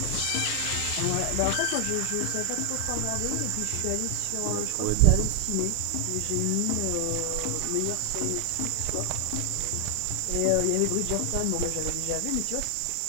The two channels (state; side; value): different; both; correlation 0.00